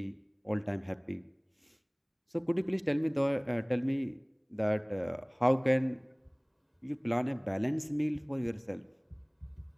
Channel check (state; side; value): identical; both; correlation 1.00